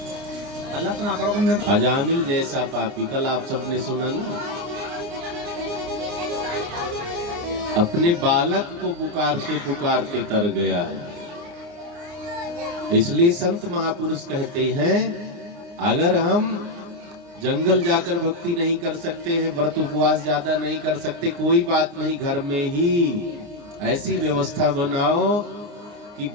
हल्ला तो ना करो। तुम अजामिल जैसा पापी, कल आप सबने सुना ना, अपने बालक को पुकारते पुकारते तर गया है। इसलिए संत महापुरुष कहते हैं, अगर हम जंगल जाकर भक्ति नहीं कर सकते हैं, व्रत उपवास ज्यादा नहीं कर सकते, कोई बात नहीं, घर में ही ऐसी व्यवस्था बनाओ कि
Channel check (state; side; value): late; left; 29 ms